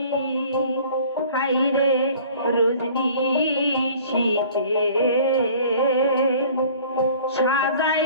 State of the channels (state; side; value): inverted; both; correlation -0.49